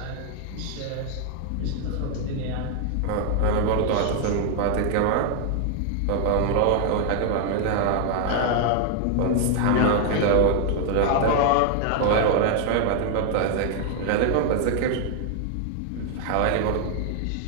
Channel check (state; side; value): different; both; correlation 0.00